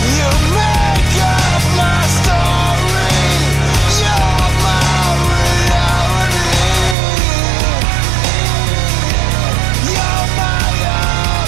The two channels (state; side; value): drops out; left; at 7.0 s